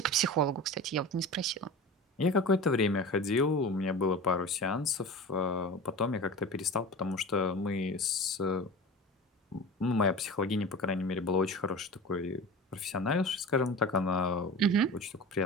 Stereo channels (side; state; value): both; normal; correlation 0.33